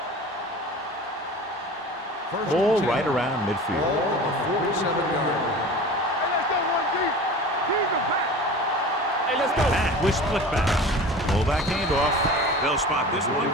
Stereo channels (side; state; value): both; normal; correlation 0.37